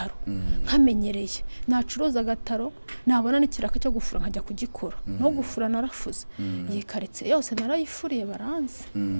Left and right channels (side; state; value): both; inverted; correlation -1.00